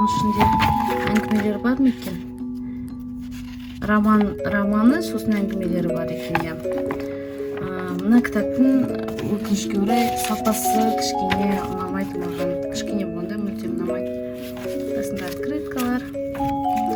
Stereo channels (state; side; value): identical; both; correlation 1.00